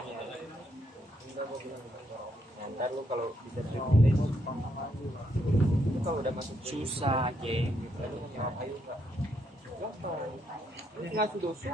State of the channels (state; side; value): normal; both; correlation 0.76